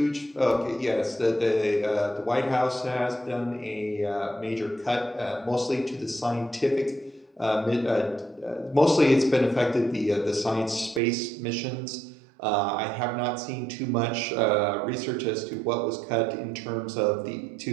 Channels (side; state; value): left; drops out; at 11.0 s